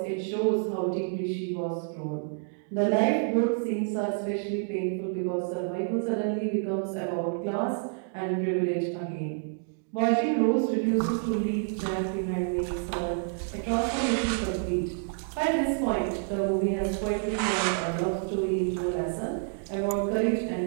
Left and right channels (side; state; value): left; silent; 59 dB below the other